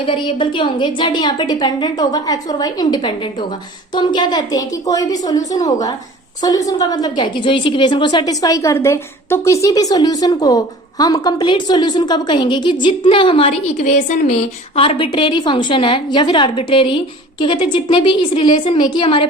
वेरिएबल के होंगे, जेड यहाँ पे डिपेंडेंट होगा, एक्स और वाई इंडिपेंडेंट होगा। तो हम क्या कहते हैं कि कोई भी सॉल्यूशन होगा, सॉल्यूशन का मतलब क्या है कि जो इस इक्वेशन को सेटिस्फाई कर दे। तो किसी भी सॉल्यूशन को हम कंप्लीट सॉल्यूशन कब कहेंगे कि जितने हमारी इक्वेशन में आर्बिट्रेरी फंक्शन है या फिर आर्बिट्रेरी क्या कहते हैं, जितने भी इस रिलेशन में कि हमारे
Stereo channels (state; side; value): normal; both; correlation 0.44